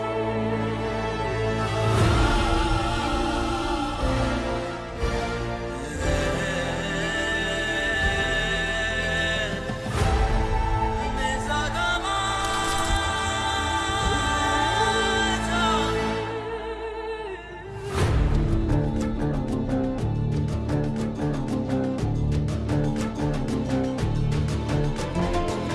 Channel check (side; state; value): both; identical; correlation 1.00